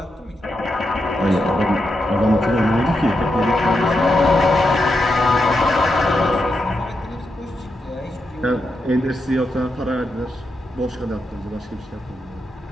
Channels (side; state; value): both; normal; correlation 0.85